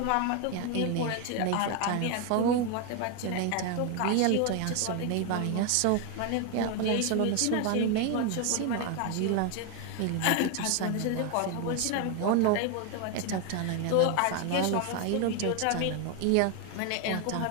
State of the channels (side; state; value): both; different; correlation 0.01